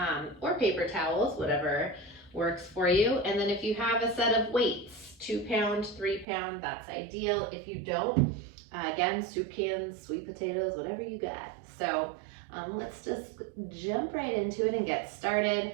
Or paper towels, whatever works for you. And then if you have a set of weights, 2 pound, 3 pound, that's ideal. If you don't, again, soup cans, sweet potatoes, whatever you got. So let's just jump right into it and get started.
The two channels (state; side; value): drops out; left; at 6.2 s